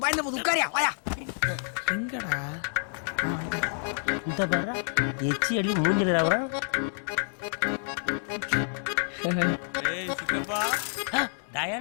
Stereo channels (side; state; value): right; silent; 57 dB below the other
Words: பயந்த போது உட்காரியா வாயா. எங்கடா இந்த பாரு எச்சி அடி மூஞ்சில ராவறான்.